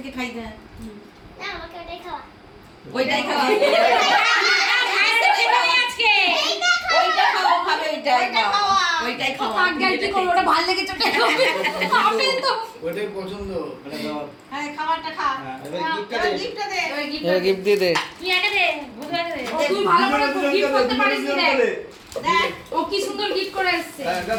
খাই দে। না আমাকে ওটাই খাওয়া। ওইটাই খাওয়া। আজকে ওইটা খাওয়া খাবে ওইটাই খাওয়া। ওইটাই খাওয়া। কি করব, ওটা ভালো লেগেছে ওটা খাবে। খাবে তো ওটাই পছন্দ মানে দাও। হ্যাঁ খাবারটা খা। এবার গিফটটা দে। গিফটটা দে। গিফট দিয়ে দে। তুই একা দে, বুঝে দে। তুই ভালো করে গিফট করতে পারিস ও কি সুন্দর গিফট করে এসেছে।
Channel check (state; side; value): identical; both; correlation 1.00